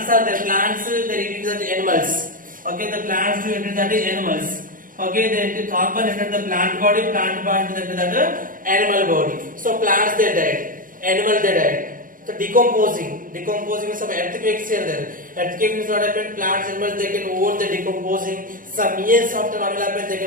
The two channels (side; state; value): left; late; 0.40 ms